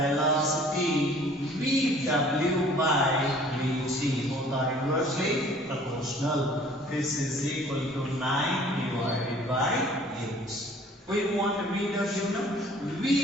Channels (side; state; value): both; normal; correlation 0.53